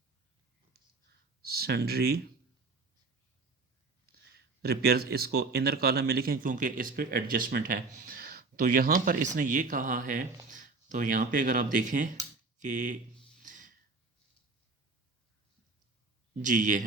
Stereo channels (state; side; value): quieter; left; 3.8 dB